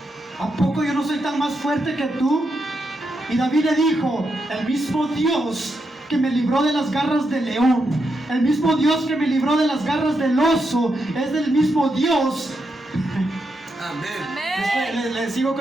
¿A poco yo no soy tan más fuerte que tú? Y David le dijo, el mismo Dios que me libró de las garras del león, el mismo Dios que me libró de las garras del oso, es del mismo Dios. Amén. Le sigo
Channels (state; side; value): normal; both; correlation 0.83